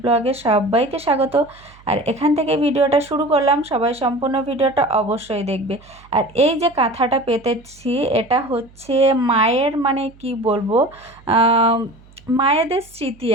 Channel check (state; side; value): noise; right; hum, 26 dB below the sound